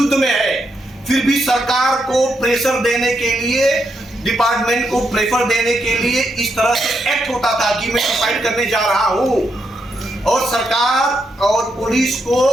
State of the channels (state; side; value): normal; both; correlation 0.81